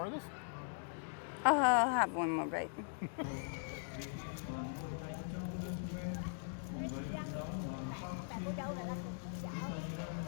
of this? I'll have one more bite. Bạn cô dâu này là cùng chú dạo.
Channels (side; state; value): right; silent; digital silence